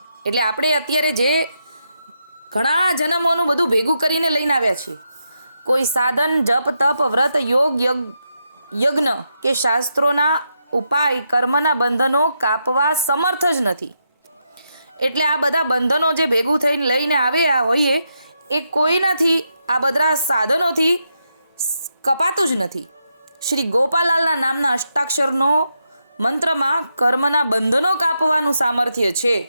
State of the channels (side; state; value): both; inverted; correlation -0.83